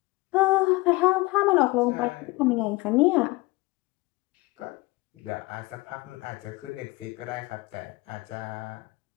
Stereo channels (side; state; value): right; quieter; 22.3 dB